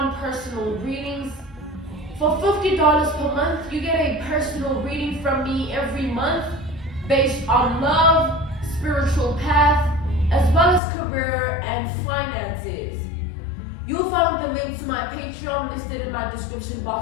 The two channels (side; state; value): right; drops out; at 10.8 s